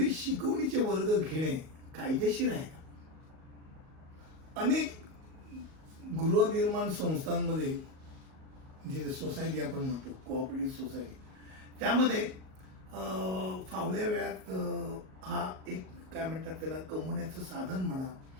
शिकवणीचे वर्ग घेणे कायदेशीर आहे का? अनेक गृहनिर्माण संस्थांमध्ये जे सोसायटी आपण म्हणतो कोऑपरेटिव्ह सोसायटी, त्यामध्ये फावल्या वेळात हा एक काय म्हणतात त्याला कमवण्याचं साधन म्हणा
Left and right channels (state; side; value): late; left; 38 ms